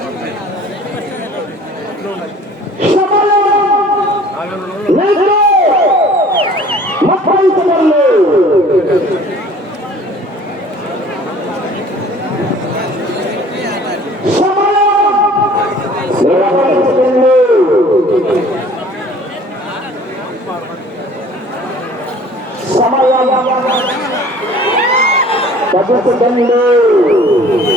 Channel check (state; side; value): normal; both; correlation 0.50